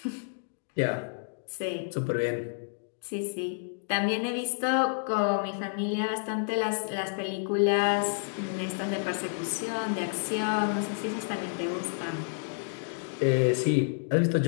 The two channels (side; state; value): right; silent; digital silence